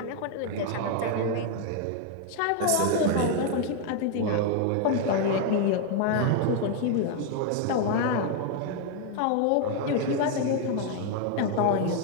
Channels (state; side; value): different; both; correlation 0.00